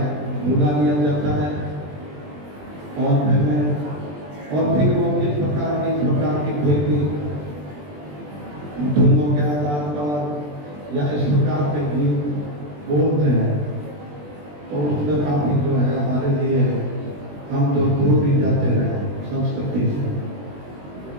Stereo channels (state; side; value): late; left; 20 ms